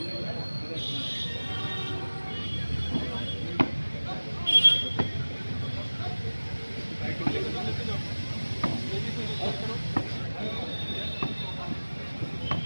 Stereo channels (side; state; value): both; inverted; correlation -1.00